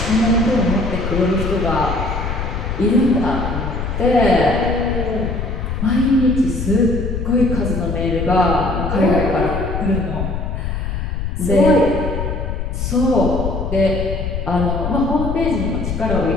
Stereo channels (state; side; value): noise; left; rumble, 3 dB below the sound